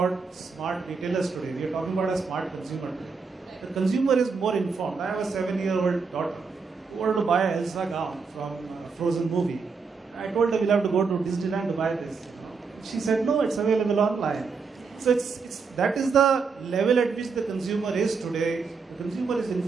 smart retailers today. We are talking about a smart consumer today. The consumer is more informed. I have a 7-year-old daughter who wanted to buy an Elsa gown from a Frozen movie. I told her we'll have to go to Disneyland to buy this. She said no, it's available online. So that is the level at which the consumer is today. The consumer is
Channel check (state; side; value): quieter; left; 5.0 dB